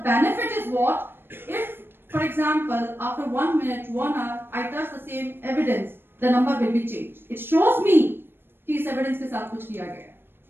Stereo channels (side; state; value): left; late; 0.10 ms